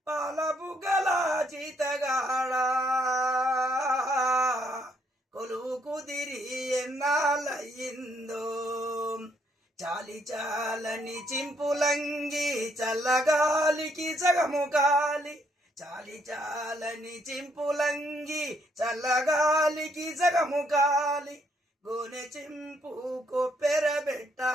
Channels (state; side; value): normal; both; correlation 0.71